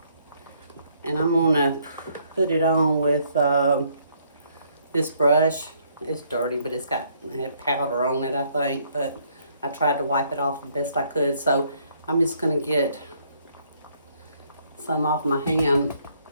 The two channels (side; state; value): both; inverted; correlation -0.67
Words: And I'm going to put it on with this brush. It's dirty, but it had powder on it, I think. But I tried to wipe it off the best I could. So I'm just going to get some off my hand.